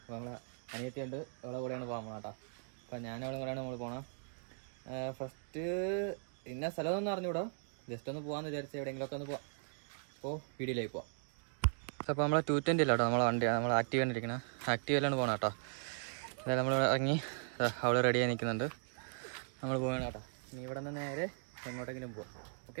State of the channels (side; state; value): left; silent; digital silence